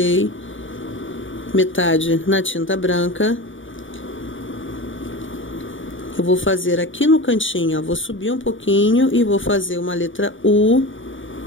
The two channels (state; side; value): late; right; 0.57 ms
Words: metade na tinta branca. Eu vou fazer aqui no cantinho, ó, vou subir um pouquinho e vou fazer uma letra U